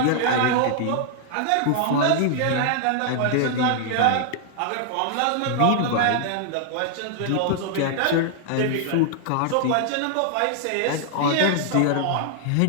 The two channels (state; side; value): different; both; correlation -0.01